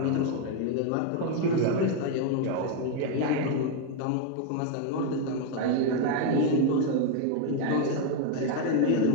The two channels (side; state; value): both; different; correlation 0.01